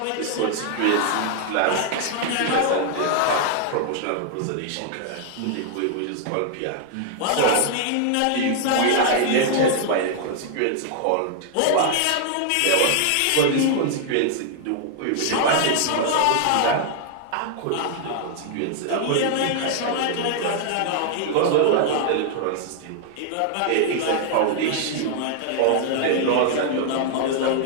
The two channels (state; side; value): different; both; correlation 0.00